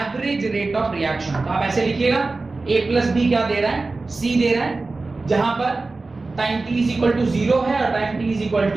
rate of reaction। तो आप ऐसे लिखिएगा A plus B क्या दे रहा है? C दे रहा है, जहां पर time t is equal to 0 है और time t is equal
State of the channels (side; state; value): left; quieter; 3.5 dB